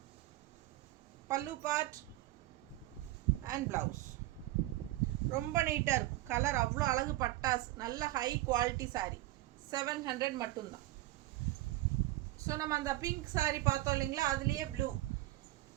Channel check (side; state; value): left; quieter; 17.1 dB